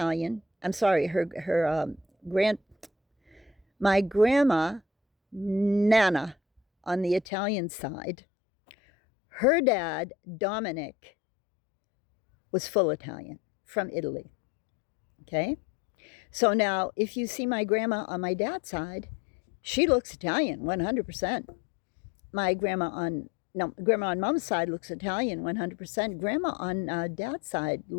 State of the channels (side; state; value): right; drops out; at 7.2 s